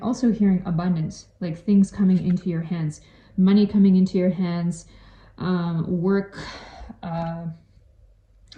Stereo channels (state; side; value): identical; both; correlation 1.00